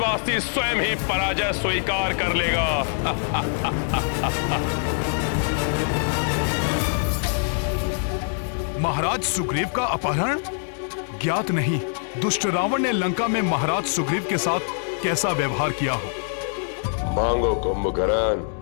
स्वयं ही पराजय स्वीकार कर लेगा। महाराज सुग्रीव का अपहरण? ज्ञात नहीं दुष्ट रावण ने लंका में महाराज सुग्रीव के साथ कैसा व्यवहार किया हो। मांगो कुंभकर्ण।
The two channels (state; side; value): silent; right; 63 dB below the other